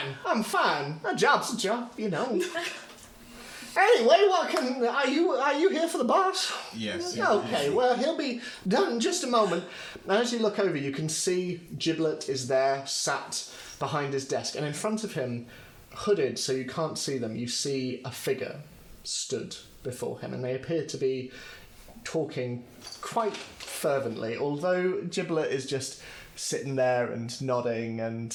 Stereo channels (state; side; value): identical; both; correlation 1.00